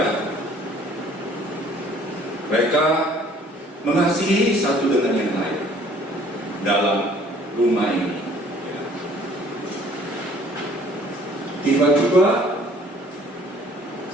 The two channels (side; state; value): both; normal; correlation 0.56